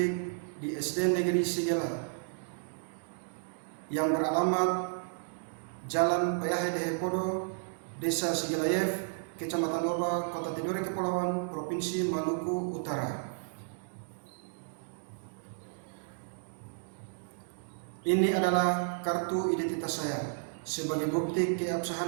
di SD Negeri Sigela yang beralamat Jalan Payahai Dehepodo, Desa Sigelayev, Kecamatan Loba, Kota Tidore Kepulauan, Provinsi Maluku Utara. Ini adalah kartu identitas saya sebagai bukti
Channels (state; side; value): silent; left; digital silence